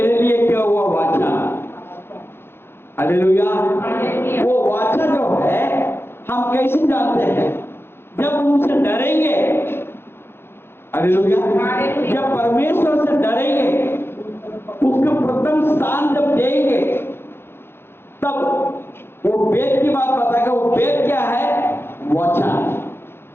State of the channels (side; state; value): right; late; 0.11 ms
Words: लिए क्या हुआ वाचा। हालेलुया। वो वाचा जो है हम कैसे जानते हैं? जब उनसे डरेंगे। हालेलुया। जब परमेश्वर से डरेंगे, उसको प्रथम स्थान जब देंगे, तब वो वेद की बात बताएगा। वो वेद क्या है? वाचा।